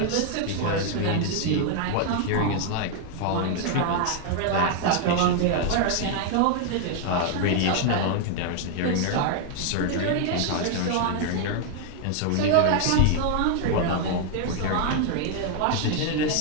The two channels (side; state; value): both; different; correlation 0.00